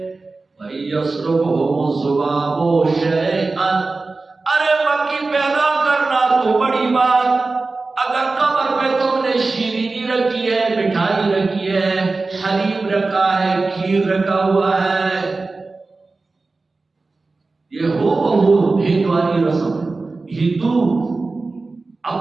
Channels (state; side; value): quieter; left; 3.6 dB